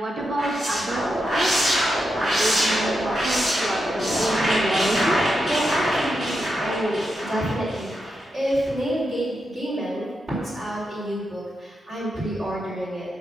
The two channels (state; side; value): normal; both; correlation 0.86